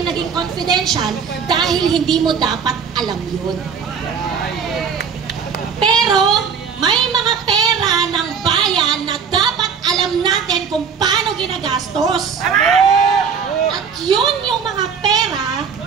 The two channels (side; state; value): left; quieter; 6.4 dB